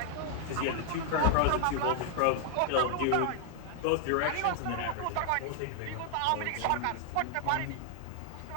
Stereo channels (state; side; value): different; both; correlation 0.00